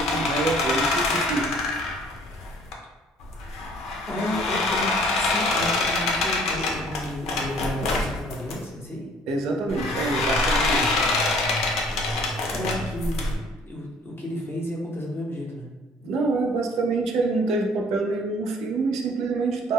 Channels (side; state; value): both; normal; correlation 0.56